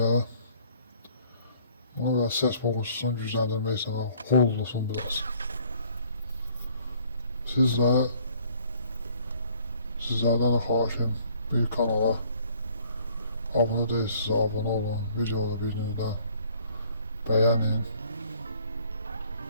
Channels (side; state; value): both; inverted; correlation -0.59